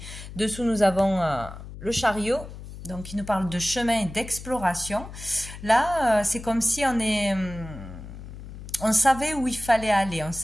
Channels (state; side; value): noise; left; hum, 13 dB below the sound